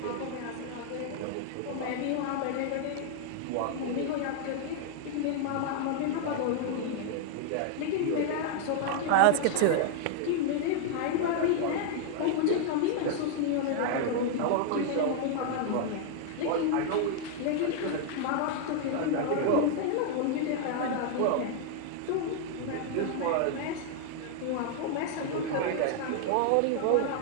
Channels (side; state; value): both; different; correlation 0.00